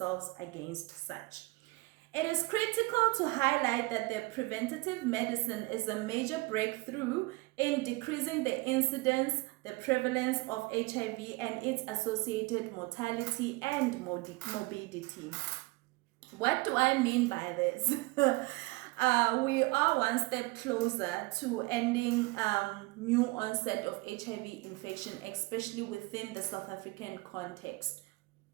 against such. It is critical to highlight that the preventative medicine is a major breakthrough in decreasing the incidence, the prevalence of HIV and its associated mortality and morbidity. What do I mean by this? We are one step closer to ending new onset of HIV infection, especially within the South African context.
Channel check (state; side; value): quieter; left; 23.8 dB